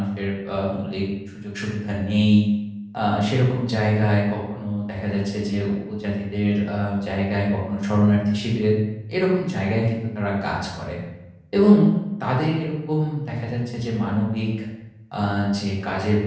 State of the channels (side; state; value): both; identical; correlation 1.00